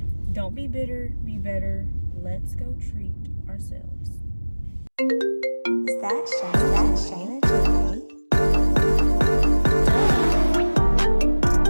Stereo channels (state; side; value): inverted; both; correlation -1.00